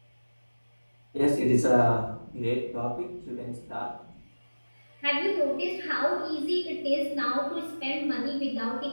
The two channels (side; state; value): both; inverted; correlation -1.00